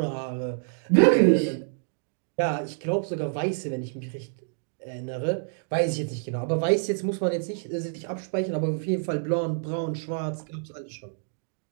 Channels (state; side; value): silent; left; digital silence